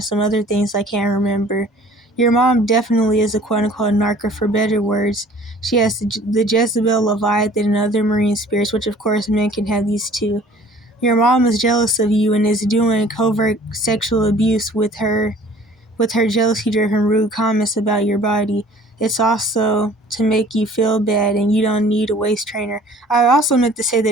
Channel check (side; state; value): both; normal; correlation 0.51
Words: some other things I can't remember. Your mom definitely is a quote-unquote narc, for better words. She has the Jezebel, Leviathan, and other marine spirits, which of course men can have these too. Your mom is jealous of you and is doing covert sexual abuse with her jealousy-driven rude comments about your body. It's also to make you feel bad, and you don't need a waist trainer. I also meant to say